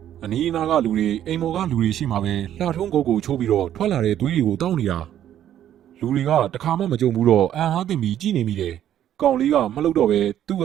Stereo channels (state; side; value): quieter; left; 11.0 dB